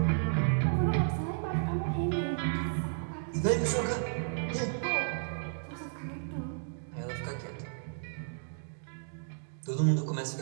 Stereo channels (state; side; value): silent; left; digital silence